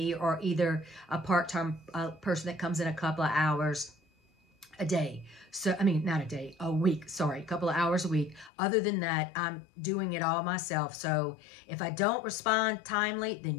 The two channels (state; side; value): drops out; right; at 8.5 s